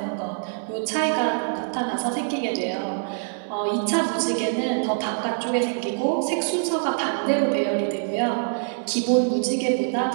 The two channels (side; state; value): left; silent; digital silence